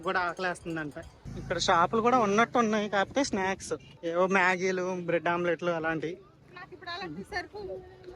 కూడా ఆకలేస్తుందంట. ఇక్కడ షాపులు కూడా ఉన్నట్టు ఉన్నాయి, కాకపోతే స్నాక్స్ ఏవో మ్యాగీలు, బ్రెడ్ ఆమ్లెట్లు అలాంటివి.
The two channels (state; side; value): identical; both; correlation 1.00